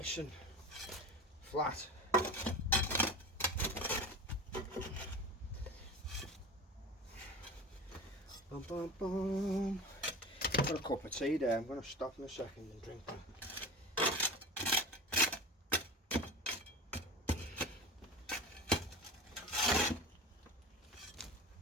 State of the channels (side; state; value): both; normal; correlation 0.32